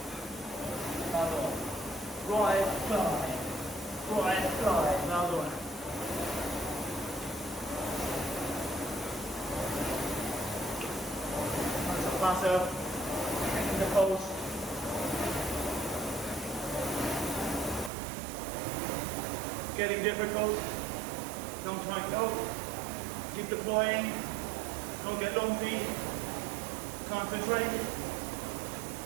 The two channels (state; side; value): drops out; left; at 17.9 s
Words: Another one. Drive, glide. Drive, glide. Another one. That's a pass out. In the post. Getting difficult. Don't try and go. Keep deploying. Don't get lumpy. Concentrate.